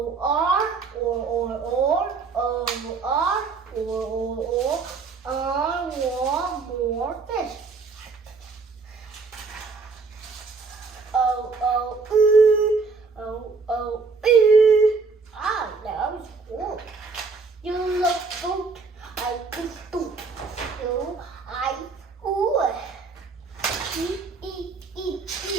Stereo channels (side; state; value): left; quieter; 4.5 dB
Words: R or O R or I want more fish. Ah, that was cool. You look good. I could do. You, I, ooh.